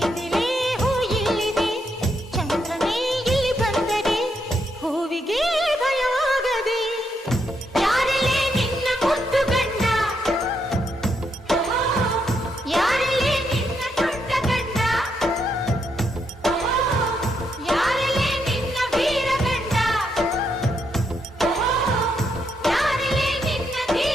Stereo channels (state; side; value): normal; both; correlation 0.79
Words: ಹೂ ಇಲ್ಲಿದೆ, ಚಂದ್ರನೇ ಇಲ್ಲಿ ಬಂದರೆ ಹೂವಿಗೆ ಭಯವಾಗದೆ. ಯಾರಲ್ಲೇ ನಿನ್ನ ಮುದ್ದು ಗಂಡ, ಯಾರಲ್ಲೇ ನಿನ್ನ ದೊಡ್ಡ ಗಂಡ, ಯಾರಲ್ಲೇ ನಿನ್ನ ವೀರ ಗಂಡ, ಯಾರಲ್ಲೇ ನಿನ್ನ